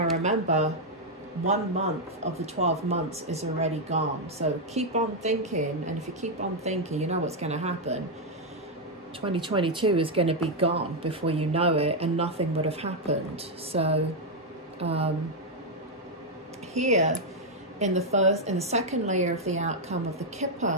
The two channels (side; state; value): both; normal; correlation 0.00